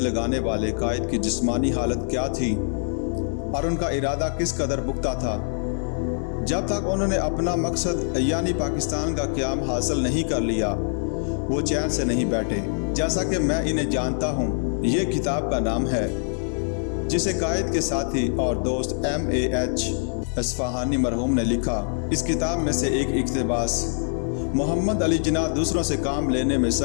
والے قائد کی جسمانی حالت کیا تھی اور ان کا ارادہ کس قدر پختہ تھا۔ جب تک انہوں نے اپنا مقصد یعنی پاکستان کا قیام حاصل نہیں کر لیا، وہ چین سے نہیں بیٹھے۔ جیسا کہ میں انہیں جانتا ہوں، یہ کتاب کا نام ہے جسے قائد کے ساتھی اور دوست M.A.H. اصفہانی مرحوم نے لکھا۔ اس کتاب میں سے ایک اقتباس: محمد علی جناح دوسروں سے کام لینے میں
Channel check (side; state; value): right; silent; 58 dB below the other